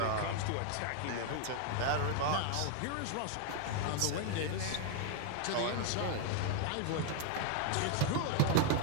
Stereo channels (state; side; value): different; both; correlation 0.00